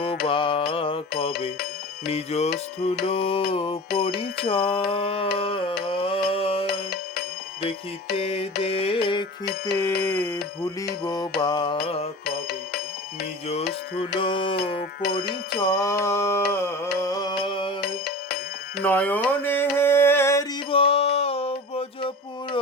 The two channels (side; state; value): both; normal; correlation 0.34